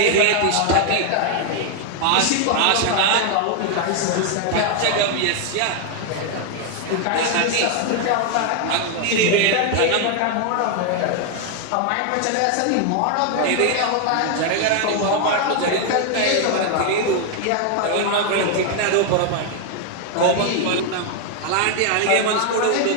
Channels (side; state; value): both; different; correlation 0.00